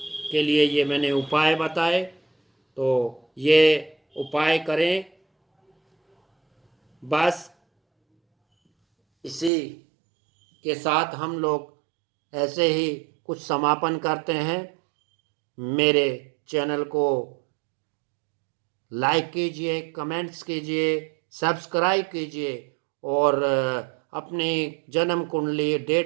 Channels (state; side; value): drops out; left; at 9.5 s